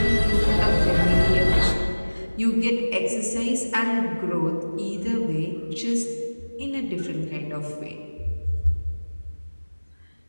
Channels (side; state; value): both; inverted; correlation -1.00